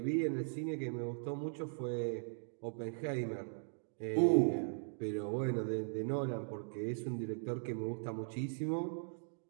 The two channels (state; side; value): silent; left; digital silence